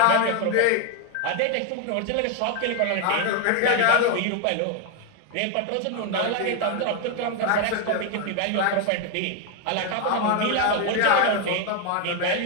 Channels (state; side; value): different; both; correlation 0.01